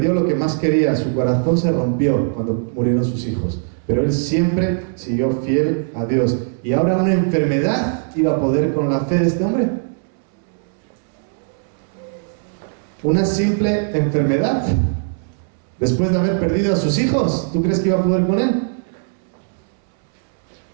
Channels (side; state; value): left; silent; 65 dB below the other